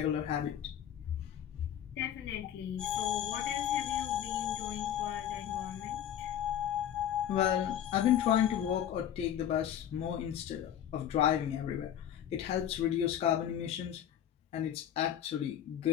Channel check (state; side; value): quieter; right; 10.2 dB